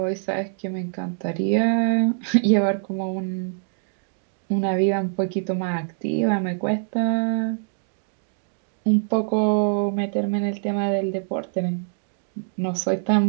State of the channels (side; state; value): left; silent; digital silence